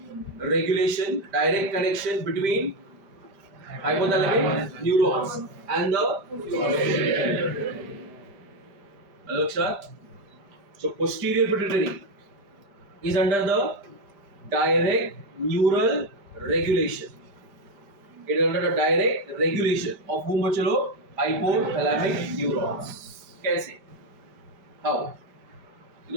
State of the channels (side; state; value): left; late; 5.1 ms